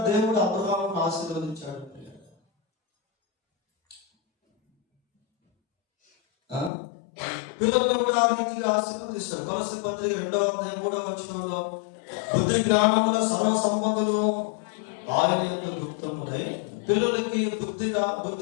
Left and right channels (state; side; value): drops out; right; at 6.7 s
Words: దేవుడు అబ్రహామును ఆశీర్వదించాడు. పిల్లలను కూడా ఆ రీతిగా ఆశీర్వదిస్తాడు. కొలస్సీ పత్రిక 2వ అధ్యాయం 3వ వచనంలో బుద్ధి జ్ఞానముల సర్వ సంపదలు ఆయన యందు గుప్తములై. పిల్లలకి బుద్ధి